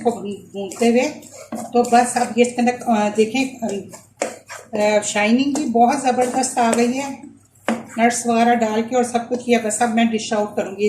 भूनते हुए। तो बस अब ये इसके अंदर देखें शाइनिंग भी बहुत ज़बरदस्त आ गई है, नट्स वगैरह डाल के और सब कुछ किया। बस अब मैं डिश आउट करूँगी।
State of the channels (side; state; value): both; identical; correlation 1.00